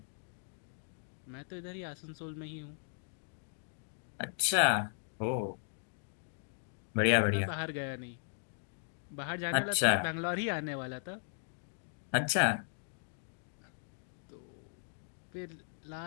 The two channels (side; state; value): right; silent; digital silence